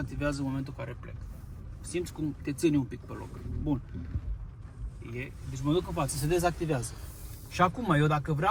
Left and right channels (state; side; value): identical; both; correlation 1.00